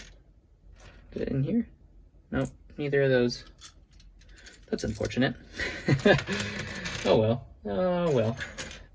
Is it in here? Nope, neither of those. That's unfortunate. Oh well. Oh well.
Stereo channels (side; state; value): both; identical; correlation 1.00